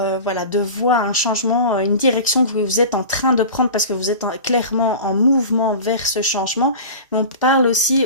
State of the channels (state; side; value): inverted; both; correlation -0.34